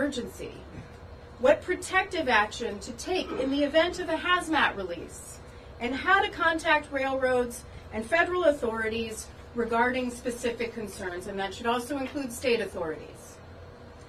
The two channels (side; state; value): both; identical; correlation 1.00